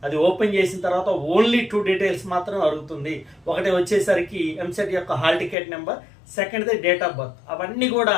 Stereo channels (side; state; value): right; drops out; at 5.6 s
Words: అది ఓపెన్ చేసిన తర్వాత ఓన్లీ 2 డీటెయిల్స్ మాత్రమే అడుగుతుంది. ఒకటి వచ్చేసరికి ఎంసెట్ యొక్క హాల్ టికెట్ నెంబర్, సెకండ్ది డేట్ ఆఫ్ బర్త్. అవన్నీ కూడా